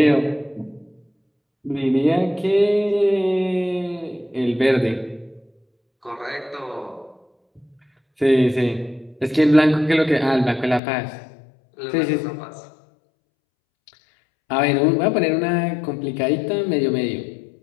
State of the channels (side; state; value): right; drops out; at 10.8 s